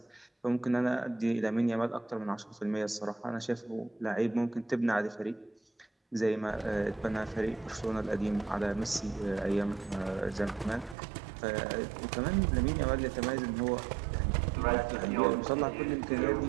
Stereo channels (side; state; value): left; drops out; at 11.0 s